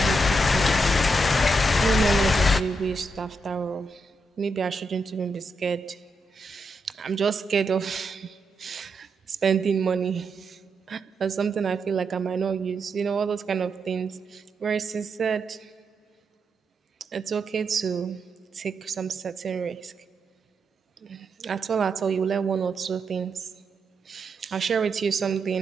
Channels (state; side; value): normal; both; correlation 0.83